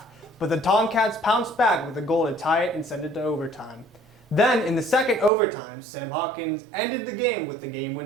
but the Tomcats pounced back with a goal to tie it and send it to overtime. Then, in the second overtime, Sam Hawkins ended the game with the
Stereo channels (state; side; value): drops out; left; at 5.3 s